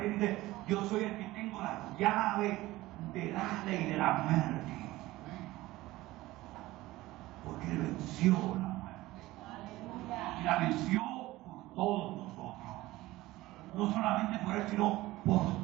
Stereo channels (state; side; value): quieter; left; 18.0 dB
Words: dice, yo soy el que tengo las llaves del Hades y de la muerte. Porque él venció la muerte. Y la venció por todos nosotros. No solamente por él, sino